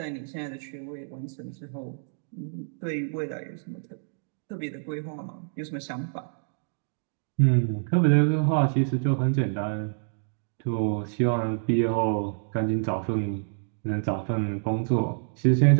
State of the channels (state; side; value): silent; left; digital silence